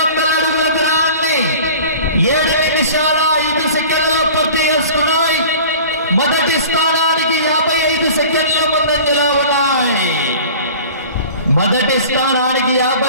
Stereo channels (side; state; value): both; inverted; correlation -0.41